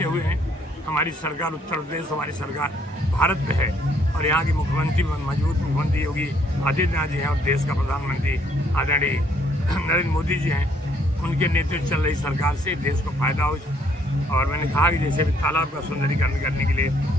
हुए हैं। हमारी सरकार उत्तर प्रदेश, हमारी सरकार भारत में है और यहाँ की मुख्यमंत्री मजबूत मुख्यमंत्री योगी आदित्यनाथ जी हैं और देश का प्रधानमंत्री आदरणीय नरेंद्र मोदी जी हैं। उनके नेतृत्व चल रही सरकार से देश को फायदा हो। और मैंने कहा कि जैसे भी तालाब का सुंदरीकरण करने के लिए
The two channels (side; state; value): both; normal; correlation 0.67